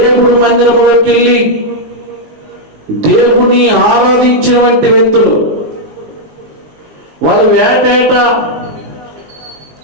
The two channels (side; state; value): left; late; 19 ms